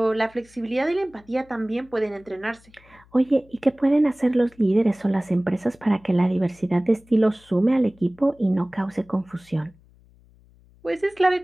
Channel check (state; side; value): noise; left; hum, 28 dB below the sound